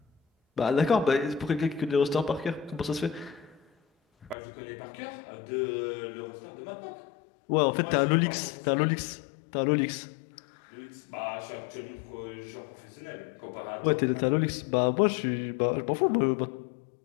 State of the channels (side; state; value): right; drops out; at 4.4 s